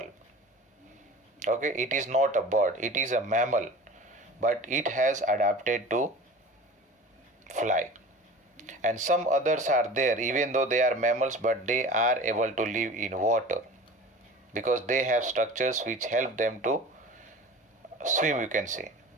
Okay, it is not a bird. It is a mammal, but it has adapted to fly. And some others are there, even though they are mammals, but they are able to live in water because they have structures which help them to swim, you can say.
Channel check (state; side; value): normal; both; correlation 0.38